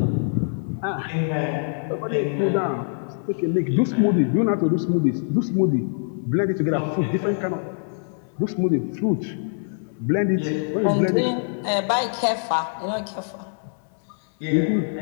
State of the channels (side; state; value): right; silent; 62 dB below the other